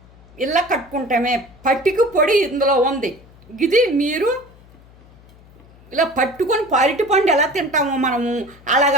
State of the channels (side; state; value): left; noise; hum, 25 dB below the sound